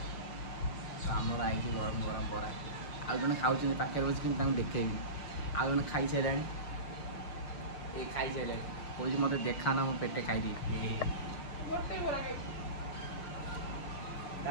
आमर आई गरम गरम बरा आ जने खाउछन पाखे बस कि तांग देखेबी आ जने खाई छेलानी ए खाई छेलानी कोई मते देखा ना मो पेटे खाई दी गोटे बरा खाई ता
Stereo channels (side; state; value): right; late; 6.5 ms